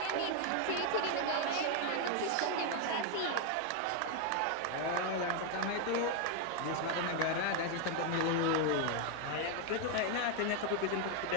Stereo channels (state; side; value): different; both; correlation 0.01